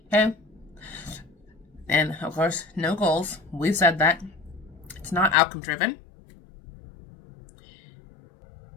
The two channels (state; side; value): drops out; right; at 5.4 s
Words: Okay? And, of course, no goals. We've said that. It's not outcome driven.